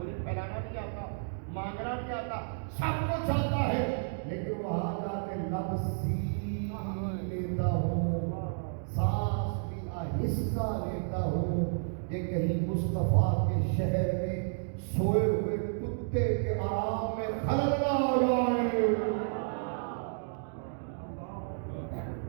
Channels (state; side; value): silent; left; digital silence